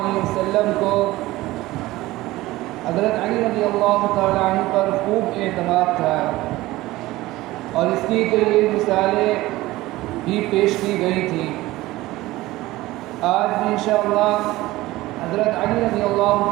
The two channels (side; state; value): left; quieter; 18.1 dB